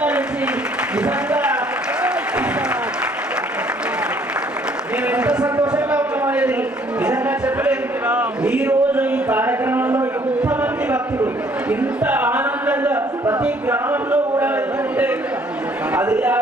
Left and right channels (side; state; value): both; normal; correlation 0.61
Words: నుంచి నిజంగా మేము ఎంత సంతోషంగా ఉన్నామనేది నిజంగా చెప్పలేదు. ఈ రోజు ఈ కార్యక్రమంలో ఎంతమంది భక్తులు ఇంత ఆనందంగా ప్రతి గ్రామంలో కూడా వెళ్తుంటే అది ఆ